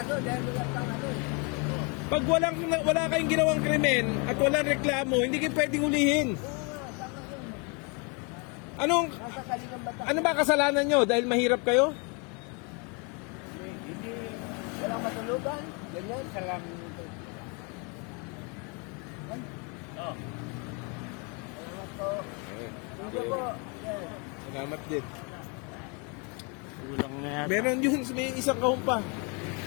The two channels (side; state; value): right; quieter; 33.3 dB